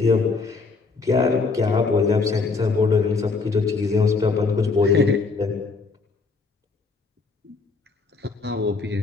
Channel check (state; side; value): quieter; right; 4.2 dB